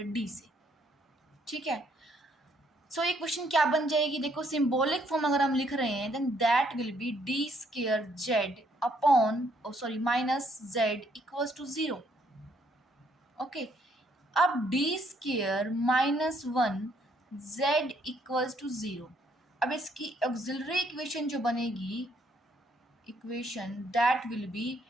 डी से, ठीक है. सो ये क्वेश्चन क्या बन जाएगी, देखो सिंबॉलिक फॉर्म अगर हम लिख रहे हैं then that will be D square Z upon minus Z equals to 0. Okay अब D square minus 1 Z equals to 0. अब इसकी ऑक्सिलरी इक्वेशन जो बनेगी equation that will be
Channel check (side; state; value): both; normal; correlation 0.69